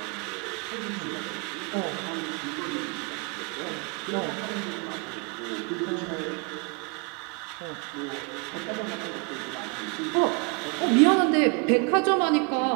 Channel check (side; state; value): left; quieter; 33.5 dB